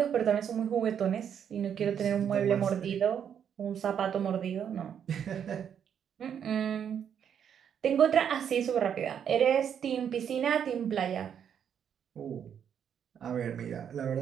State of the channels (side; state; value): left; quieter; 8.4 dB